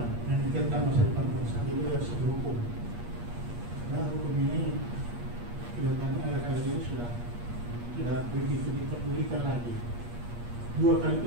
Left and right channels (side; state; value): left; late; 8.4 ms